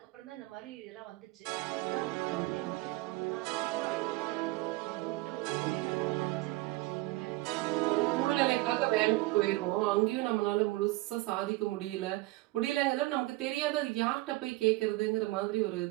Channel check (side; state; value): left; quieter; 20.4 dB